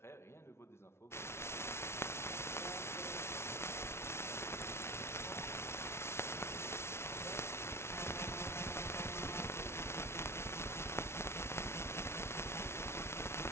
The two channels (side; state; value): right; late; 0.12 ms